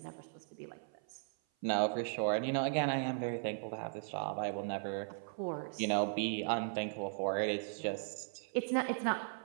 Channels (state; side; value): silent; left; 53 dB below the other